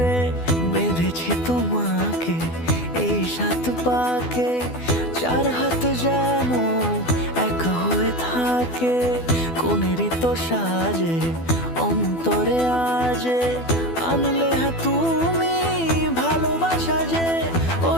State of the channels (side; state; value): right; late; 12 ms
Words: বেঁধেছি তোমাকে এই 7 পাকে, 4 হাত যেন এক হয়ে থাকে। কোনেরই তো সাজে অন্তরে আজে আনলে তুমি ভালোবাসা যে। ও